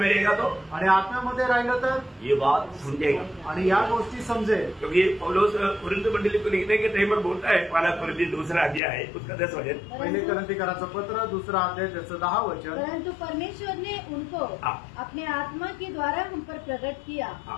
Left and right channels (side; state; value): right; drops out; at 8.8 s